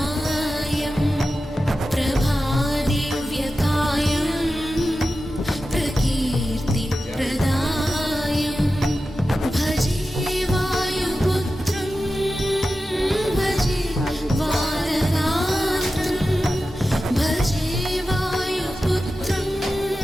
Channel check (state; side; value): normal; both; correlation 0.93